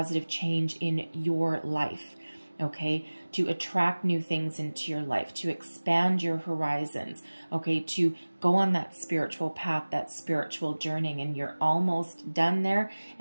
change in your life, okay? To attract new things into your life, to expand your horizons, okay? To go on that spiritual path, that spiritual journey, and you're almost done there.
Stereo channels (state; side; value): inverted; both; correlation -1.00